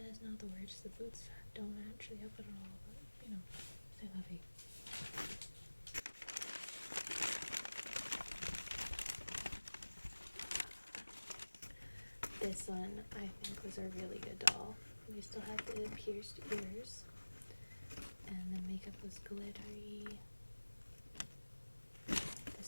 not the worst. The boots don't actually help it at all, but you know, c'est la vie. This one I think was a really good doll. We still had the pierced ears, and the makeup was glittery.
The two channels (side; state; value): both; inverted; correlation -1.00